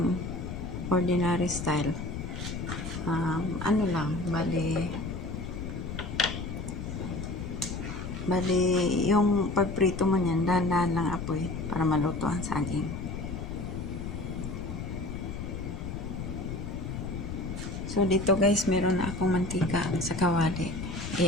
ordinary style, bali yung pagprito mo niyan, dahan-dahan lang apoy para maluto ang saging. So dito guys, meron na akong mantika sa kawali.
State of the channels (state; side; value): noise; left; rumble, 6 dB below the sound